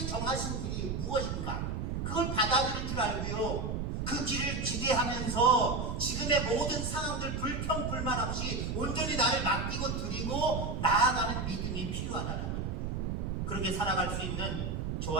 정하신 길이 무엇인가? 그걸 받아들일 줄 알고요. 그 길을 기대하면서 지금의 모든 상황들 불평 불만 없이 온전히 나를 맡기고 드리고 나아가는 믿음이 필요하다는 거예요. 그렇게 살아갈 수 있는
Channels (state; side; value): noise; right; rumble, 2 dB below the sound